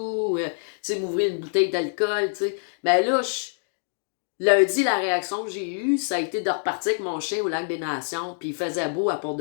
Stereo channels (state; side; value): silent; right; digital silence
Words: tu sais, m'ouvrir une bouteille d'alcool, tu sais. Mais là, lundi, la réaction que j'ai eue, ça a été de repartir avec mon chien au Lac des Nations, puis il faisait beau à part